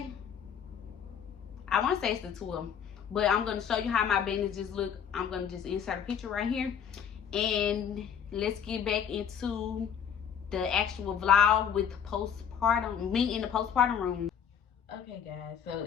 it's the 12th, but I'm gonna show you how my bandages look. I'm gonna just insert a picture right here, and let's get back into the actual vlog with postpartum, me in the postpartum room. Okay guys, so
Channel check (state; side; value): quieter; right; 8.0 dB